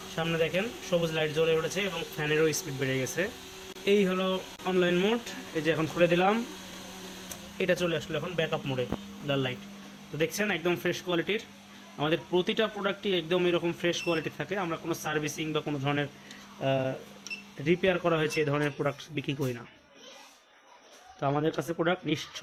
সামনে দেখেন সবুজ লাইট জ্বলে উঠেছে এবং ফ্যানেরও স্পিড বেড়ে গেছে। এই হলো অনলাইন মোড। এই যে এখন খুলে দিলাম, এটা চলে আসলো এখন ব্যাকআপ মোডে, লাল লাইট। তো দেখছেন একদম ফ্রেশ কোয়ালিটির। আমাদের প্রতিটা প্রোডাক্টই একদম এরকম ফ্রেশ কোয়ালিটি থাকে। আমরা কোনো সার্ভিসিং বা কোনো ধরনের রিপেয়ার করা হয়েছে এই ধরনের প্রোডাক্ট বিক্রি করি না। তো আমাদের কাছে প্রোডাক্ট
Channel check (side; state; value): both; identical; correlation 1.00